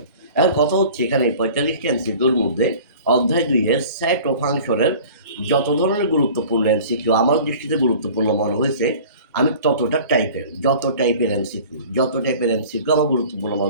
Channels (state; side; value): inverted; both; correlation -0.44